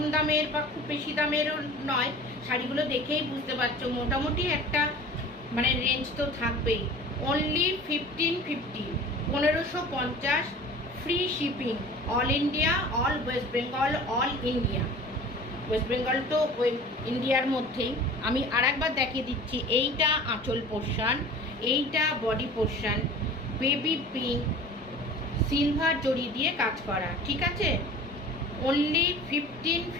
দামের বা খুব বেশি দামেরও নয়। শাড়িগুলো দেখেই বুঝতে পারছো মোটামুটি একটা মানে রেঞ্জ তো থাকবেই। Only 1550, 1550, free shipping, all India, all West Bengal, all India. West Bengal তো ওই ইন্ডিয়ার মধ্যেই। আমি আর একবার দেখিয়ে দিচ্ছি। এইটা আঁচল পোর্শন, এইটা body portion, baby pink, silver zari দিয়ে কাজ করা। ঠিক আছে, অনলি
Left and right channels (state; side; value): normal; both; correlation 0.42